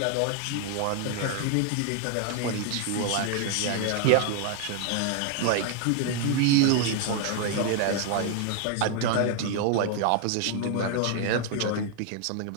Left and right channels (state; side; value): different; both; correlation 0.00